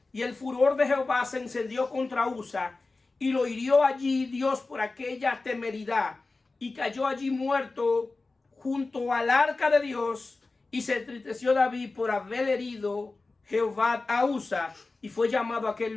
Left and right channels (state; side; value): quieter; right; 3.6 dB